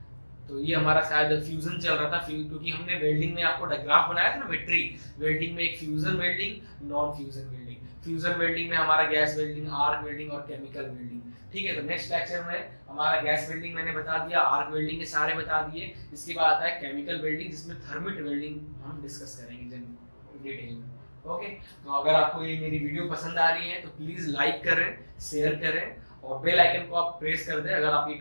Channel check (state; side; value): inverted; both; correlation -1.00